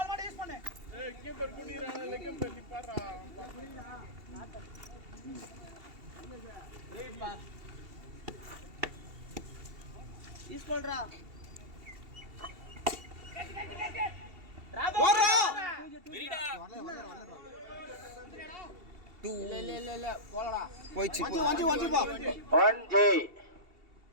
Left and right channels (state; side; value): late; left; 2.7 ms